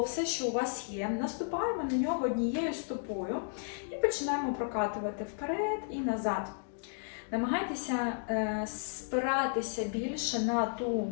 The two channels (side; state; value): right; silent; digital silence